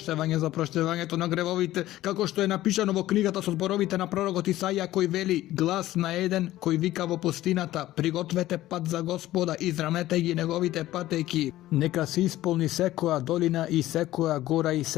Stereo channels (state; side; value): quieter; right; 15.2 dB